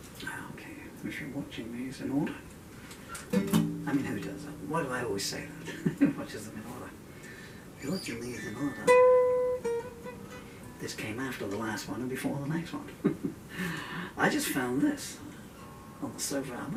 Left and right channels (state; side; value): identical; both; correlation 1.00